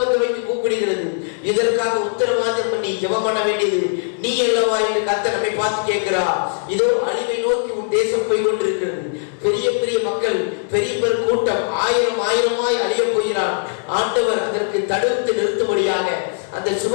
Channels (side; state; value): right; silent; digital silence